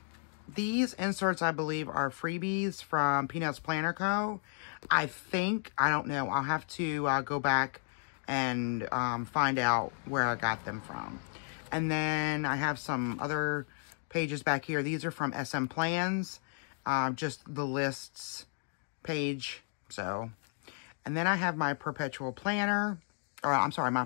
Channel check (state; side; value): silent; right; 56 dB below the other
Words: these inserts, I believe, are freebies from Peanuts Planner Co. I don't know. I'll have to go back and find out where I got them from. And then I have some other pages back here. These are from SM Plans. Just the lists page. So, and then I have my perpetual planner, or I'm sorry, my